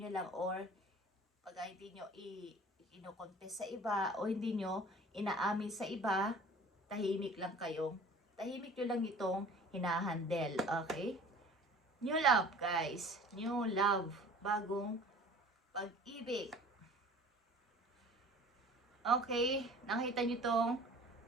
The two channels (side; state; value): both; normal; correlation 0.46